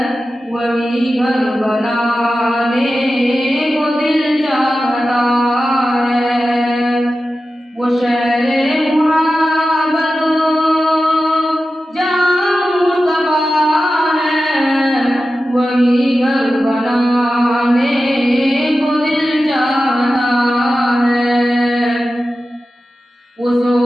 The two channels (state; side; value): normal; both; correlation 0.93